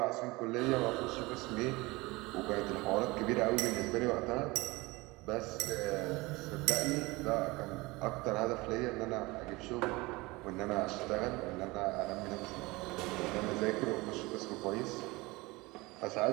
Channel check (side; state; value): left; quieter; 22.6 dB